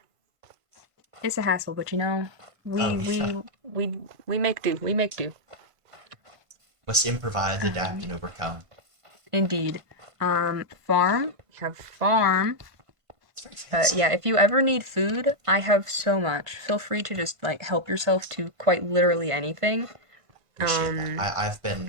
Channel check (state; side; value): late; left; 1.5 ms